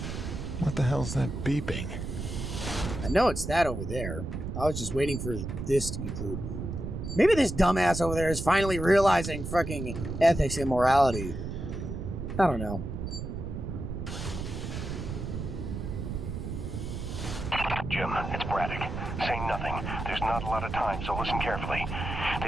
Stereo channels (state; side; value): noise; right; rumble, 5 dB below the sound